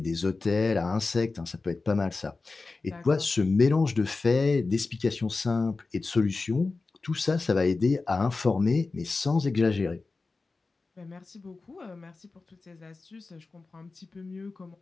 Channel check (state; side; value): quieter; right; 3.8 dB